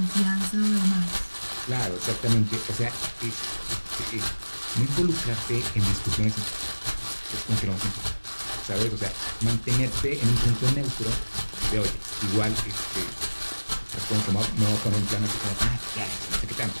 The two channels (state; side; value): inverted; both; correlation -1.00